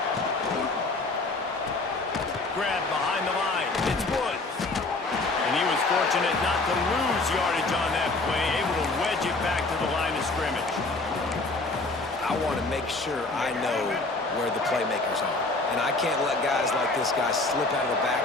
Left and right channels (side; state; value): right; quieter; 3.3 dB